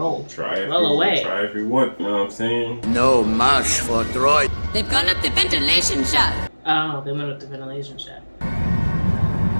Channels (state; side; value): inverted; both; correlation -1.00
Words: Try away. if you want, you know what I'm saying? No mash for droid. They've gone up the ventilation shaft. Oh, they went up the ventilation shaft.